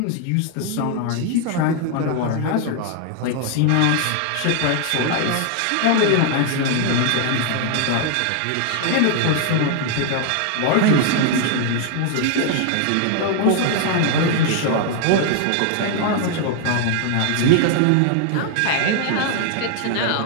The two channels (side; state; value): both; different; correlation 0.00